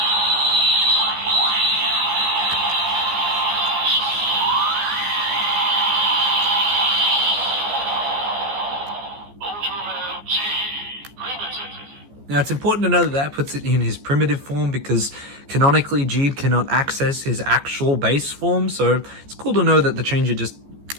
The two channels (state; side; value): late; left; 14 ms